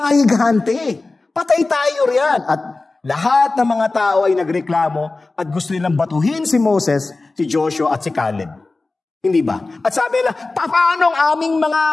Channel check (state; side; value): quieter; right; 3.4 dB